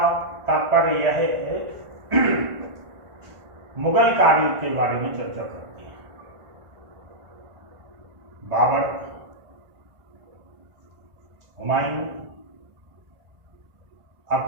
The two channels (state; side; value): late; left; 1.5 ms